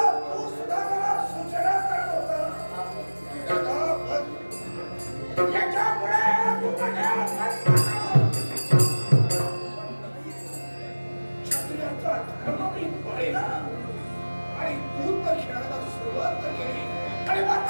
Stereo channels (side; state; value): both; inverted; correlation -1.00